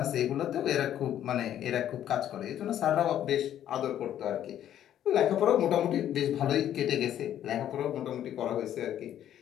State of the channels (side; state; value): right; quieter; 11.0 dB